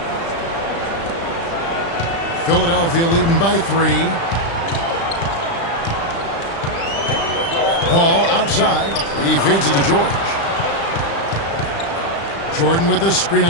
Philadelphia leading by 3. Paul outside. He feeds it to George. Jordan with a screen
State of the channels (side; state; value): right; late; 35 ms